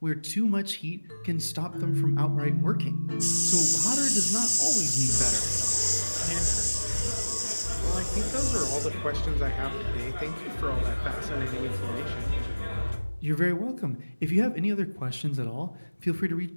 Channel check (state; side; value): inverted; both; correlation -1.00